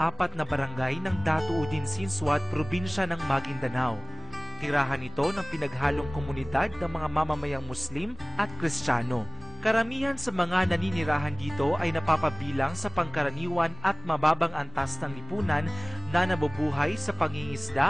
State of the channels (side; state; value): left; noise; hum, 26 dB below the sound